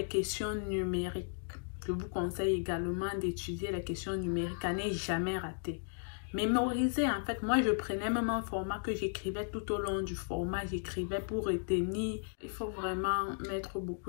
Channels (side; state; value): right; silent; digital silence